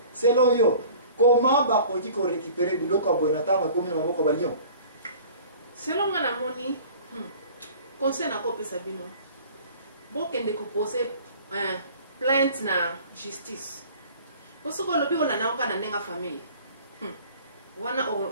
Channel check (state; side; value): inverted; both; correlation -0.46